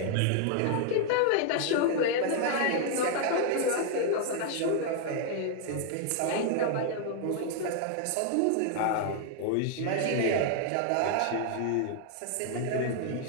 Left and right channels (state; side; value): different; both; correlation 0.00